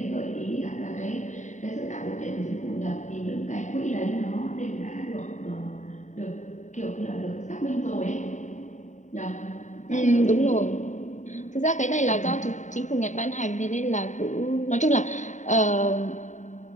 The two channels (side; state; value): right; late; 0.35 ms